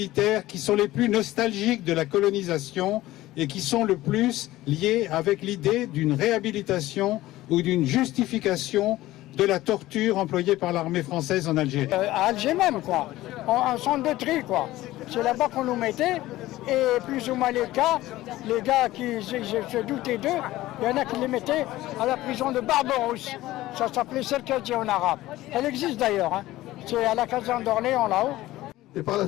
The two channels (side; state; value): right; quieter; 16.5 dB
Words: qui sont les plus nostalgiques de la colonisation et qui sont le plus liés avec l'idée d'une réhabilitation ou d'une justification de la torture employée par l'armée française en Algérie. À Alger même, quoi. En centre de tri, quoi. C'est là-bas qu'on nous mettait. Et plus ou moins les gars qui se doutaient d'eux, il y en a qui les mettaient à la prison de Barberousse. Ça s'appelait Serkadji en arabe. Elle existe d'ailleurs. Hein. C'est à la caserne d'Orléans, là-haut. Et par la